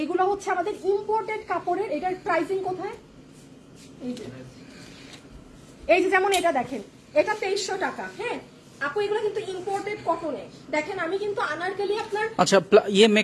হচ্ছে আমাদের ইম্পোর্টেড কাপড়ের। এটার প্রাইসিং কোথায়? এই যে যেমন এটা দেখেন, এটা 2300 টাকা। হ্যাঁ আপু এগুলো কিন্তু ইম্পোর্টেড কটনে। দেখেন আমি কিন্তু আনারকলি আপনার আচ্ছা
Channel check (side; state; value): both; identical; correlation 1.00